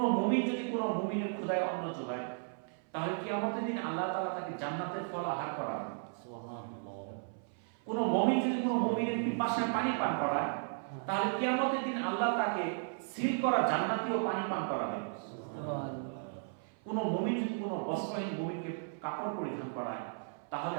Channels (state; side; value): silent; left; 54 dB below the other